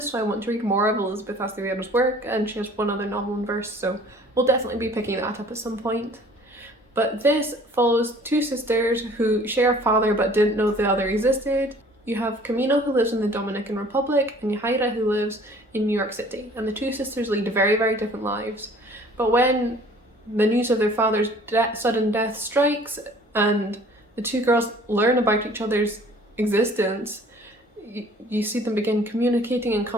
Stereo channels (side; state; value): both; normal; correlation 0.51